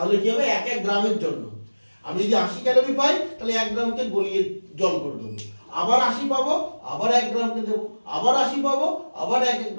কি হবে? 1 গ্রামের জন্য আমি যদি 80 ক্যালোরি পাই, তাহলে 1 গ্রামকে গলিয়ে জল করে দেবো, আবার 80 পাবো, আবার 1 গ্রামকে দেবো, আবার 80 পাবো, আবার 1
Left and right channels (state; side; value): inverted; both; correlation -1.00